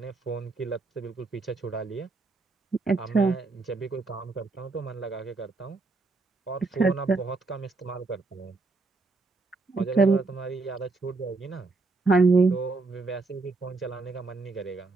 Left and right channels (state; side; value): quieter; left; 3.6 dB